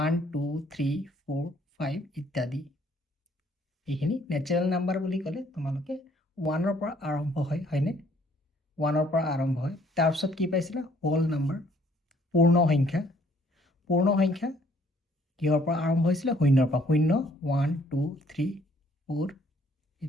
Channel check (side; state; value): both; normal; correlation 0.62